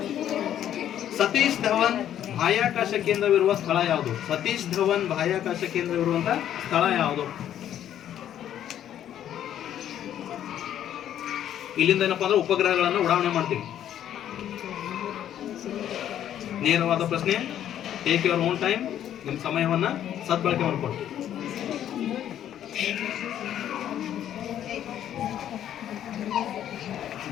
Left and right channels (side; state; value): right; quieter; 10.8 dB